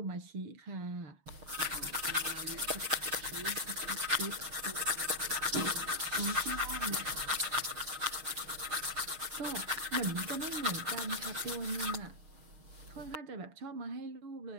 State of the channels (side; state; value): left; late; 6.5 ms